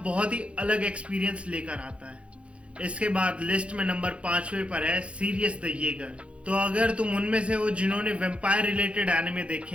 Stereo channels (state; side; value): late; left; 0.061 ms